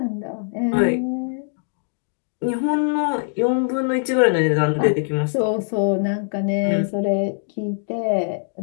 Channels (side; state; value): right; silent; digital silence